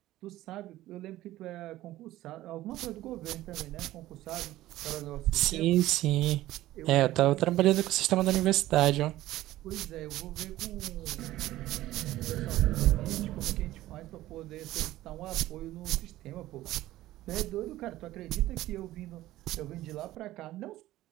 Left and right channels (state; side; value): quieter; left; 15.6 dB